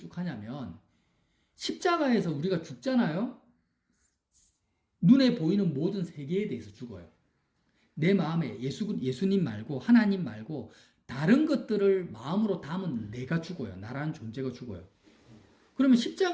하냐면, 십자가에서 우리가 죽잖아요. 눈에 보이는 모든 세계에 대해서 죽어요. 내 마음에 예수님 말고 하나님 말고 다른 것들을 마음으로 담은 내가 죽어요. 나라는 존재가 죽어요. 그러면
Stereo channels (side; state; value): both; identical; correlation 1.00